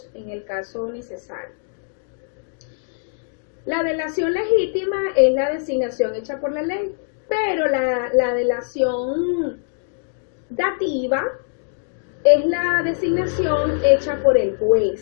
en el caso necesario. La delación legítima es la designación hecha por la ley, pero la delación dativa es la designación hecha por el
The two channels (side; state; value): right; silent; digital silence